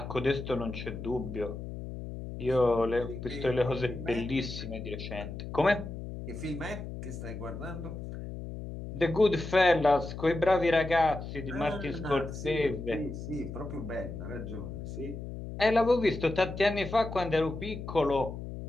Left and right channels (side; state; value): left; noise; hum, 8 dB below the sound